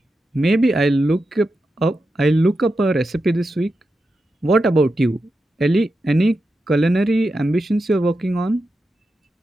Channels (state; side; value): normal; both; correlation 0.89